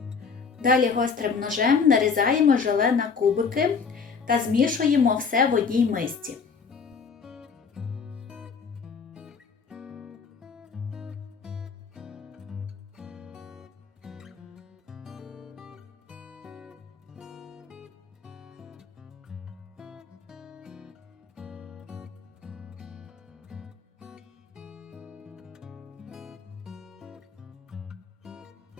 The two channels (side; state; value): right; quieter; 5.5 dB